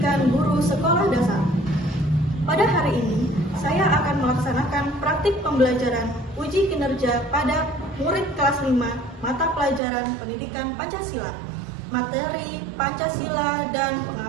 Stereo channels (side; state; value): left; drops out; at 9.8 s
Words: guru sekolah dasar. Pada hari ini, saya akan melaksanakan praktik pembelajaran uji kinerja pada murid kelas 5 mata pelajaran pendidikan Pancasila, materi Pancasila dan